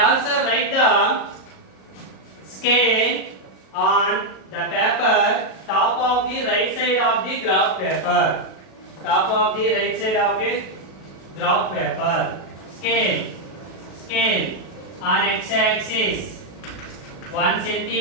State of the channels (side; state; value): right; late; 37 ms